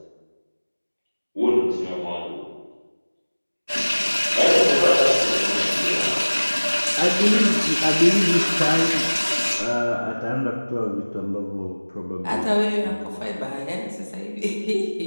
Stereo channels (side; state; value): both; inverted; correlation -1.00